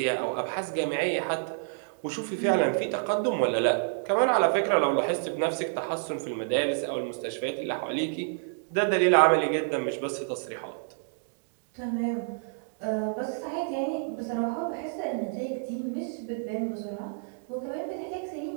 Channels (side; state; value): left; silent; digital silence